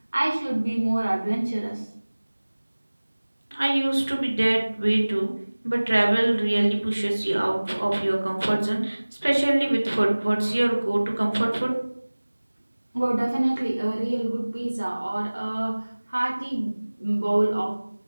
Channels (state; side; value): inverted; both; correlation -1.00